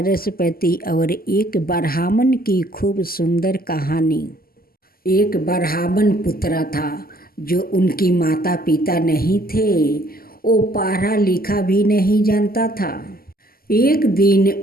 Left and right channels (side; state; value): right; late; 0.43 ms